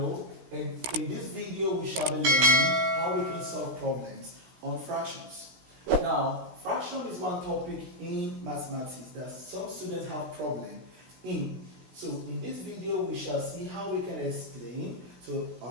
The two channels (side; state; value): left; late; 16 ms